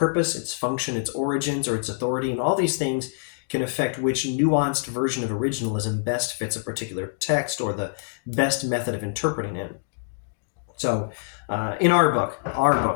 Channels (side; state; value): right; silent; digital silence